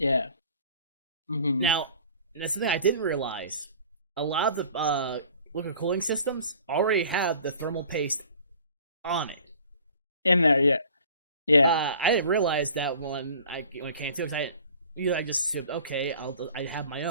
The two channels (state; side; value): inverted; both; correlation -0.48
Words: Mm-hmm. Now, that's something I didn't realize. A lot of the liquid cooling systems already have the thermal paste on it. In there, yeah. Yeah. I didn't realize that when it came to it. I just said, okay, I have my